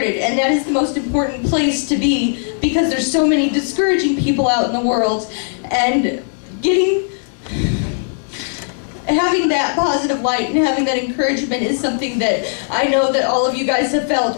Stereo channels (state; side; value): silent; right; 58 dB below the other